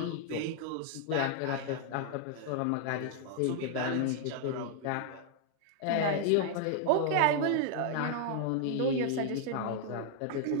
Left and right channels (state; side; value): different; both; correlation 0.00